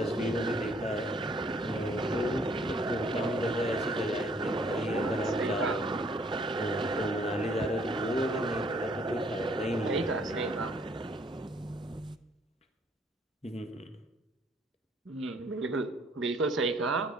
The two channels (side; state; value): both; normal; correlation 0.62